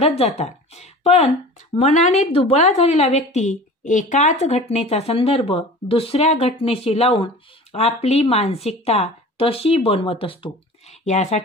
जातात. पण मनाने दुबळा झालेला व्यक्ती एकाच घटनेचा संदर्भ दुसऱ्या घटनेशी लावून आपली मानसिकता तशी बनवत असतो.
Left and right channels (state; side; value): normal; both; correlation 0.39